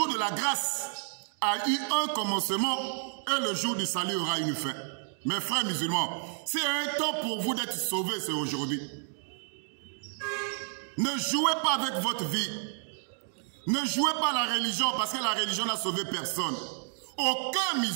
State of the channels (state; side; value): silent; left; 57 dB below the other